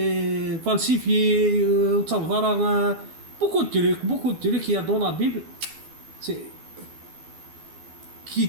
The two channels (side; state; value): left; late; 12 ms